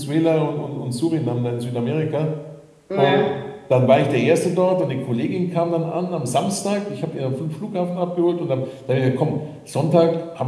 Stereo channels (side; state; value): both; identical; correlation 1.00